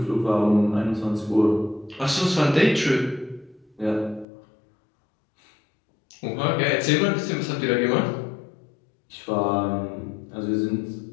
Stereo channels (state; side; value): drops out; right; at 4.2 s